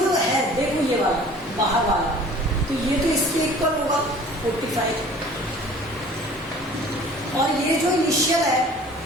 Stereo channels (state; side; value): normal; both; correlation 0.47